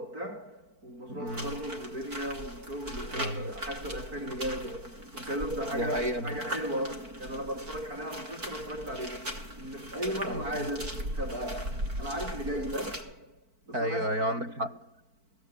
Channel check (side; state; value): left; late; 4.5 ms